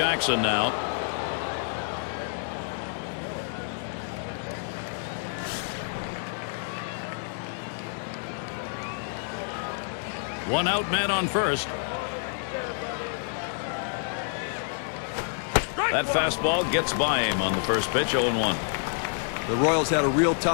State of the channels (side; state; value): right; silent; digital silence